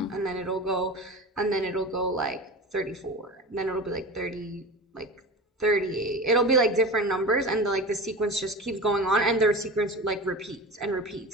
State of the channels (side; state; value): both; normal; correlation 0.31